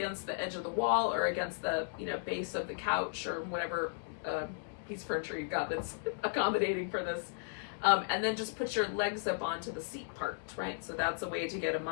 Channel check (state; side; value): silent; right; digital silence